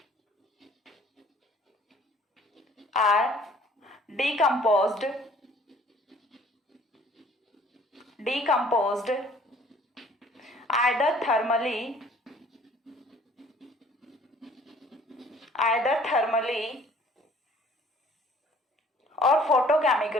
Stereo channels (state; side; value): normal; both; correlation 0.55